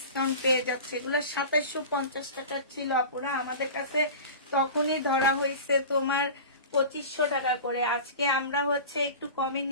পেয়ে যাচ্ছে। এগুলো 2750 টাকা ছিল আপুরা, আমাদের কাছে তখনই ধরা হয়েছে তোমার 2500 টাকা করে। আজকে আমরা হচ্ছে একটু কমে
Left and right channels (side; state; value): both; inverted; correlation -0.34